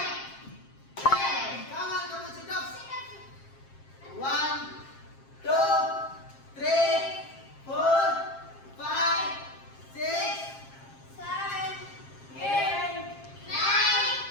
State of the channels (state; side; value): late; right; 7.5 ms